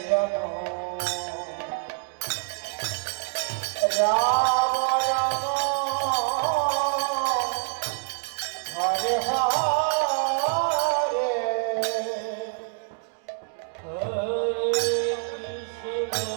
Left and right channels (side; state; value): left; silent; 61 dB below the other